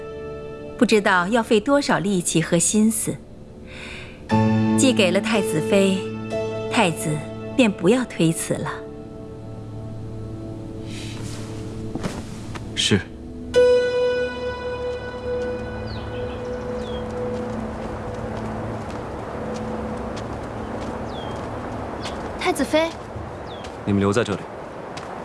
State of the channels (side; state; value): both; identical; correlation 1.00